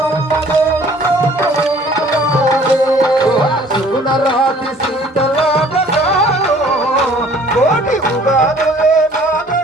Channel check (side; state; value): both; normal; correlation 0.54